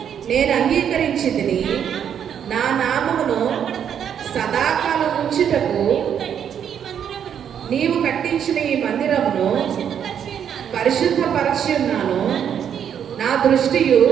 నేను అంగీకరించితిని. నా నామమును సదాకాలం ఉంచుటకు నీవు కట్టించిన ఈ మందిరమును పరిశుద్ధపరచి ఉన్నాను. నా దృష్టియు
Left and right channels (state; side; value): quieter; left; 8.6 dB